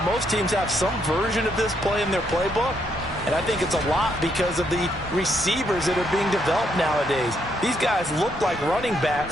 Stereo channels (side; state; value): both; normal; correlation 0.75